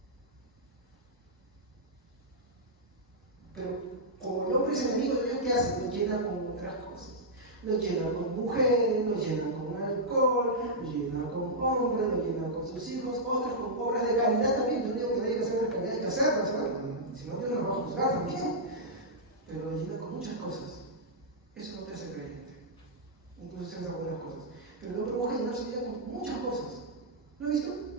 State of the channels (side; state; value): both; normal; correlation -0.10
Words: Pero como el hombre es enemigo de Dios, ¿qué hace? Lo llena con otras cosas. Lo llena con mujeres, lo llena con alcohol, lo llena con hombres, lo llena con sus hijos, otros con obras de caridad también. Yo digo que hay que hacer la caridad, hay que hacerlo, ¿sabes? Si no, Dios nos va a juzgar también. Pero lo llena con muchas cosas. Eso no te hace creyente. Incluso se hace algunas cosas. Pero el hombre busca llenar su vida con muchas cosas. ¿Lo has visto?